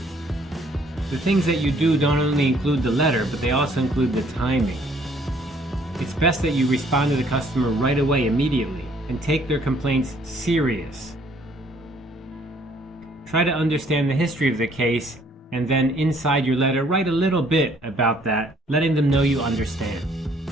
the things that you do don't only include the letter, but they also include the timing. It's best that you respond to the customer right away, immediately, and take their complaints serious. Try to understand the history of the case, and then inside your letter, write a little bit about that, letting them know you understand.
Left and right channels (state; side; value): normal; both; correlation 0.62